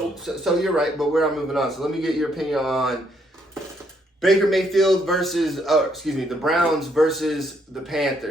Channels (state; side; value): normal; both; correlation 0.72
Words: so you're right, but we're not moving on. So let me get your opinion on Baker Mayfield the Browns versus the